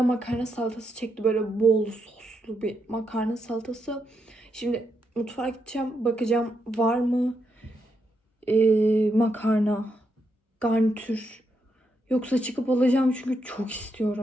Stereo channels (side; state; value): both; normal; correlation 0.81